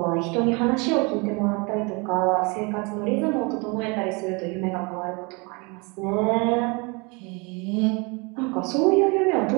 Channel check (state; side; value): quieter; left; 29.3 dB